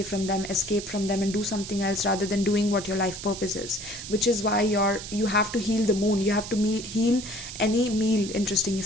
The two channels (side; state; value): right; noise; hiss, 10 dB below the sound